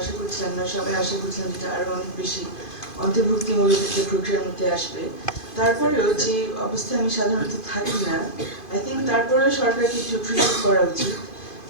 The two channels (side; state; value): right; late; 2.5 ms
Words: আশা করছিলাম না, সবাই আশা করছিলাম যেটা আরো অনেক বেশি অন্তর্ভুক্তিমূলক একটা প্রক্রিয়ার মধ্যে আসবে। তারপরেও যে অবস্থায় আমি সাধারণত থাকি না, আই থিঙ্ক তারপরেও সরকারকে একটু প্রিভিউ করা উচিত